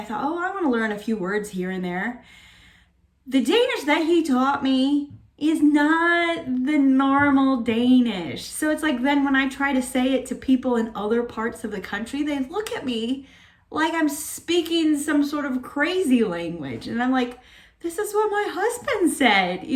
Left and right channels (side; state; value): both; identical; correlation 1.00